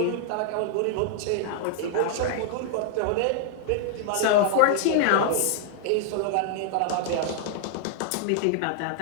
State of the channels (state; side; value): different; both; correlation 0.00